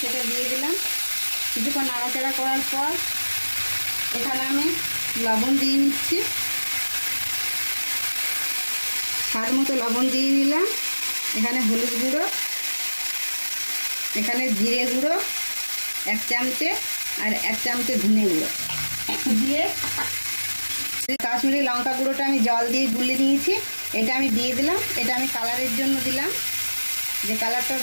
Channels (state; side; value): inverted; both; correlation -1.00